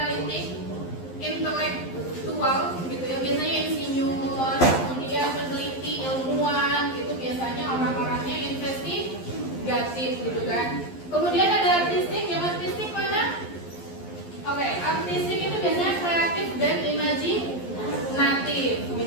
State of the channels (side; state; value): right; late; 11 ms